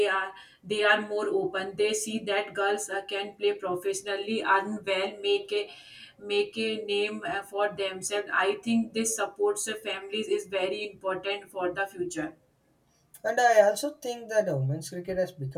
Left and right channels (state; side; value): identical; both; correlation 1.00